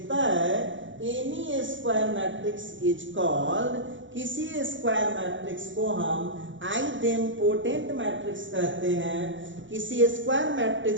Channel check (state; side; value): late; left; 0.55 ms